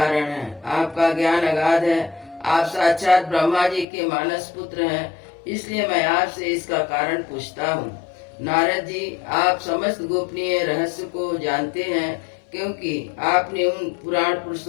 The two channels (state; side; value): drops out; right; at 3.9 s